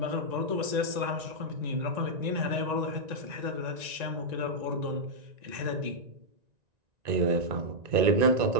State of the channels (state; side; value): late; left; 1.9 ms